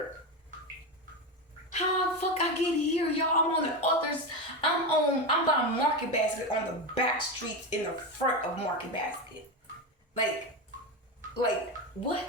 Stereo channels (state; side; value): normal; both; correlation 0.16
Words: How the fuck I get here, y'all? I'm on the others. I'm by Market Basket on the back streets in the front of Market Basket. Like